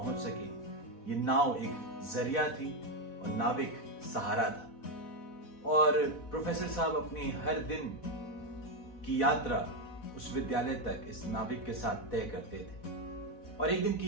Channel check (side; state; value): right; late; 4.1 ms